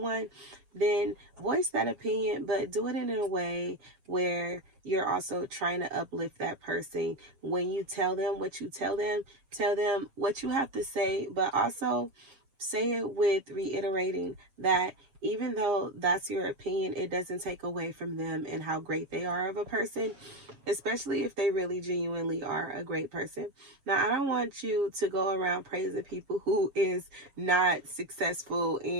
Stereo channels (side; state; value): left; late; 7.3 ms